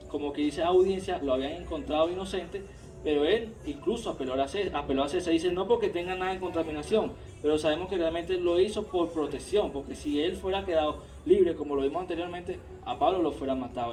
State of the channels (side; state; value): both; identical; correlation 1.00